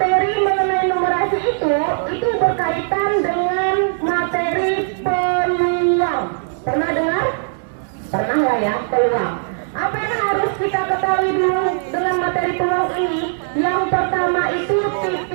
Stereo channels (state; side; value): silent; left; digital silence